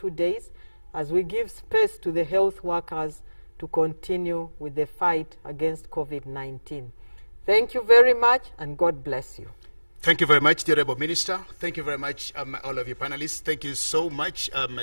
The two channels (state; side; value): inverted; both; correlation -1.00